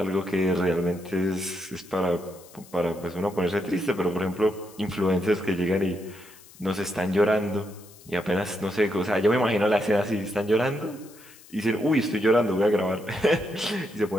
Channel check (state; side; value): noise; left; hiss, 23 dB below the sound